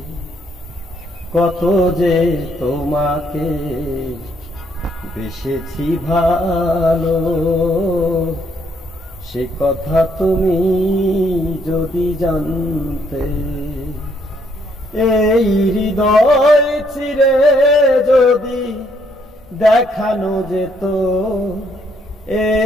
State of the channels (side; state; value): both; normal; correlation 0.70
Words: কত যে তোমাকে বেসেছি ভালো, সে কথা তুমি যদি জানতে। এই হৃদয় চিরে যদি দেখানো যেত,